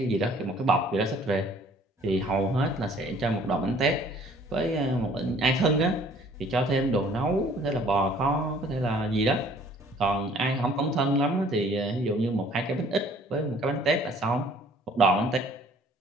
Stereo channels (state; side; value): normal; both; correlation 0.56